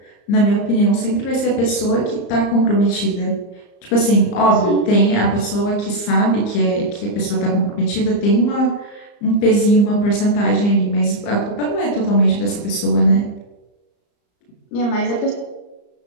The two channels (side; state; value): right; late; 34 ms